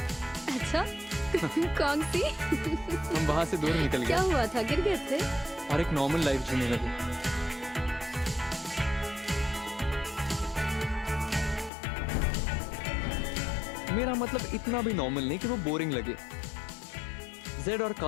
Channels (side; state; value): right; drops out; at 11.7 s